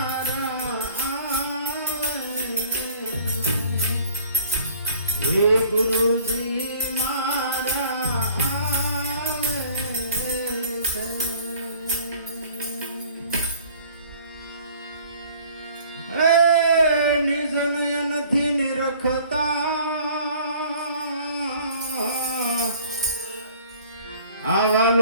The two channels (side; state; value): both; inverted; correlation -0.52